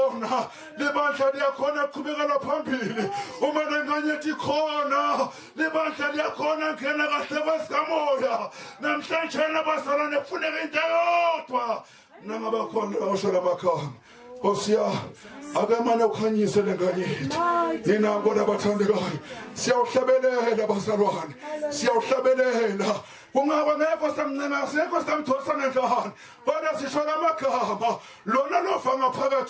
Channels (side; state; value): both; identical; correlation 1.00